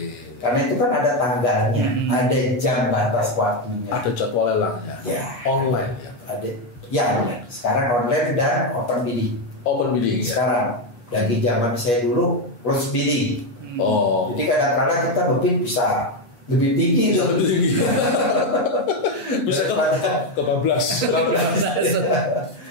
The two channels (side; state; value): right; late; 8.3 ms